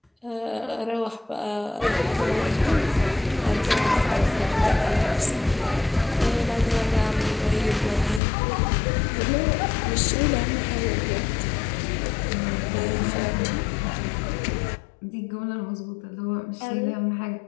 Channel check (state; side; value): drops out; right; at 8.2 s